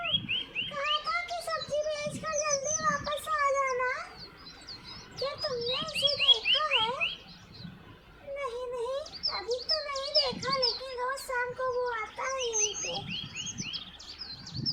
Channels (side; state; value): both; identical; correlation 1.00